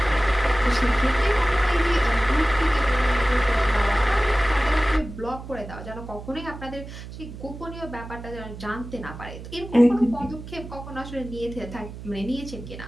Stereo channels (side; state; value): right; noise; hum, 12 dB below the sound